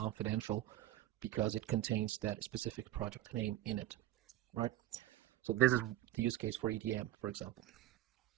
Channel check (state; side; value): quieter; left; 14.0 dB